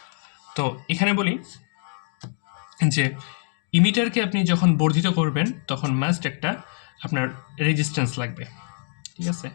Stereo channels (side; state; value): right; silent; 61 dB below the other